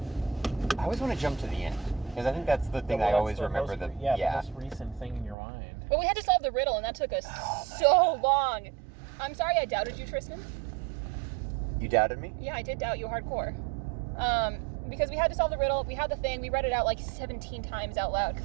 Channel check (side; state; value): left; drops out; at 5.4 s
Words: I always want to jump to the end. Because I think that's the thing I always remember. The most recent thing in your mind. Well, we had to solve the riddle, and that took us so long. I'm sorry I doubted you, Tristan. You doubted me? Yeah, I did doubt you hardcore. Because we had to solve the riddle, we had the thing, we read it out like 17 times out loud